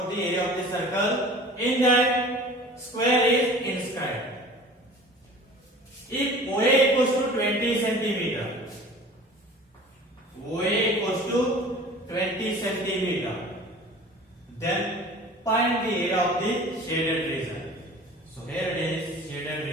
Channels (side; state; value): both; normal; correlation 0.43